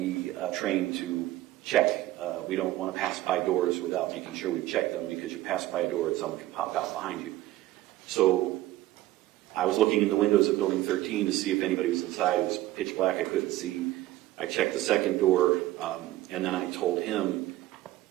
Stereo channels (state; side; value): quieter; left; 15.9 dB